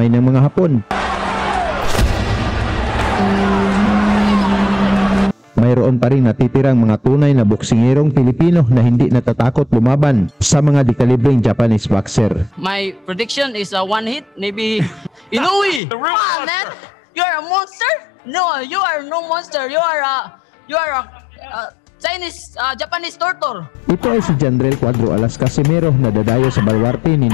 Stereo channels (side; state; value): right; drops out; at 15.8 s